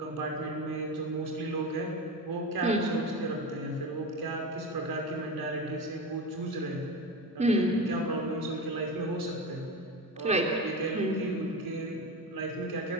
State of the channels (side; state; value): both; normal; correlation 0.24